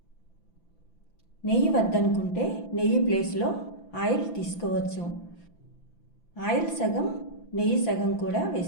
నెయ్యి వద్దనుకుంటే నెయ్యి ప్లేస్లో ఆయిల్ తీసుకోవచ్చు. ఆయిల్ సగం, నెయ్యి సగం కూడా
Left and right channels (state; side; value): late; right; 5.9 ms